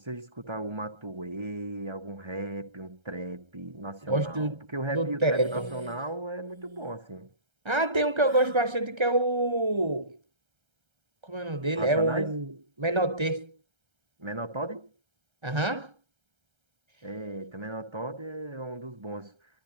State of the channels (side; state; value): left; late; 1.3 ms